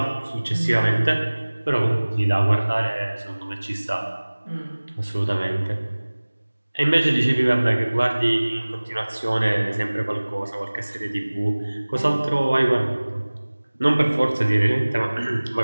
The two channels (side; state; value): both; inverted; correlation -1.00